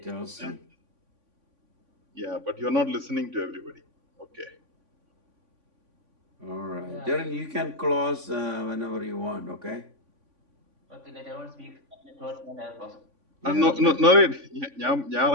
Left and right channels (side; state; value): left; late; 3.5 ms